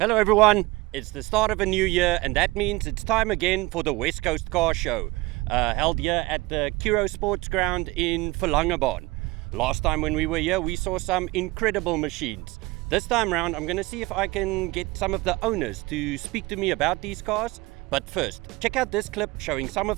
everyone, it's the start of a new year and that means it's time again for the West Coast Car Show, held here at the Kuro Sports Ground in Verlangebaan. Last time when we were here we saw some incredible machines. This time round I'm going to see if I can get some of the owners to speak to me about these cars. But first, check out this clip showing some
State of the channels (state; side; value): quieter; left; 21.9 dB